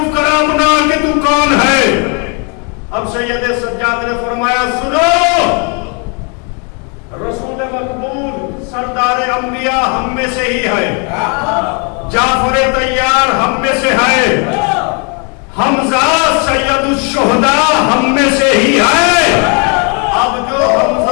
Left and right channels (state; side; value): quieter; right; 35.7 dB